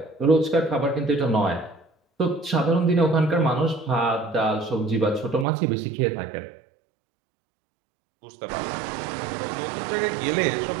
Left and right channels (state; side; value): drops out; left; at 5.5 s